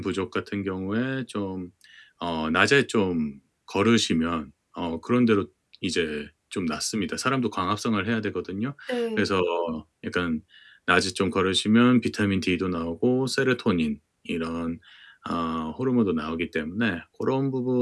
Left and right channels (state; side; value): identical; both; correlation 1.00